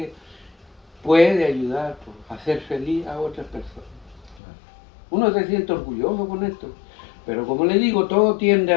puede ayudar a hacer feliz a otras personas. Uno se siente orgulloso con esto. Pero como le digo, todo tiende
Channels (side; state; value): right; drops out; at 4.4 s